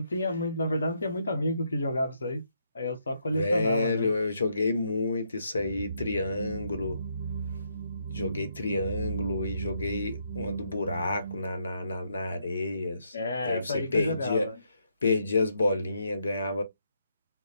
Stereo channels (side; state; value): both; inverted; correlation -0.76